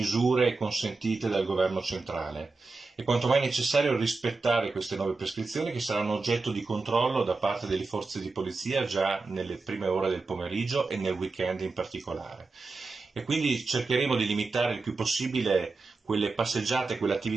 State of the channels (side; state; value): left; quieter; 3.9 dB